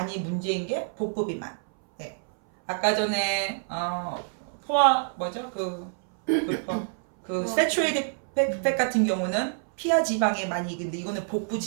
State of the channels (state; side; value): silent; left; 60 dB below the other